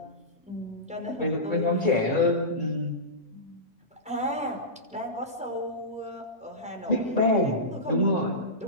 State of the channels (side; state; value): both; normal; correlation -0.17